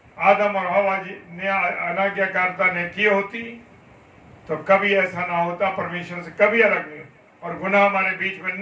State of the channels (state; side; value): identical; both; correlation 1.00